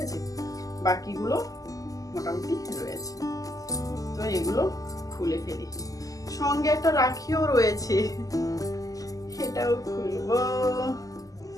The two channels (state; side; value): late; right; 0.17 ms